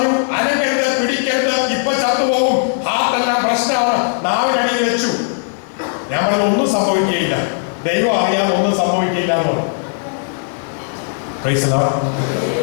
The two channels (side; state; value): right; silent; digital silence